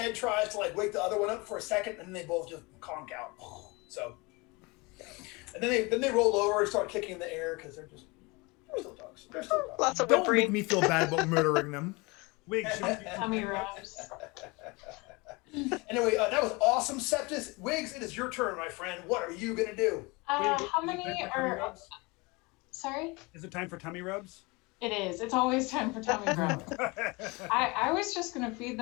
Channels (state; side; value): quieter; right; 26.1 dB